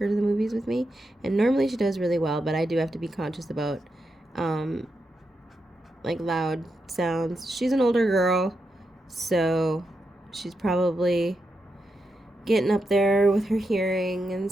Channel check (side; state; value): both; normal; correlation 0.86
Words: to the movies with me. And normally she does really well, but I do have to be conscious about, like, loud sounds. She's an older girl, so she's probably getting up there with her hearing and